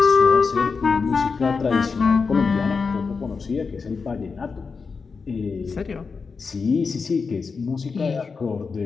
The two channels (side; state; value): right; quieter; 5.0 dB